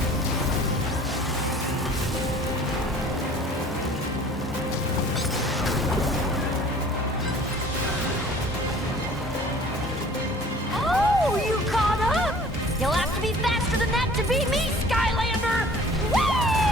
Oh, you caught up! You'll have to be faster than that to beat me, Skylander!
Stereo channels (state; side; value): normal; both; correlation 0.49